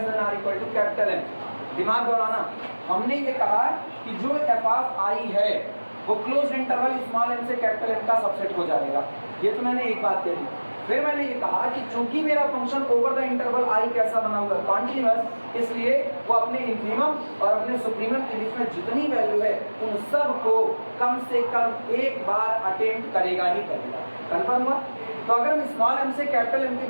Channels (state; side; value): inverted; both; correlation -1.00